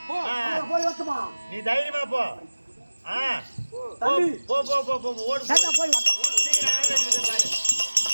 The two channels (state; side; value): inverted; both; correlation -1.00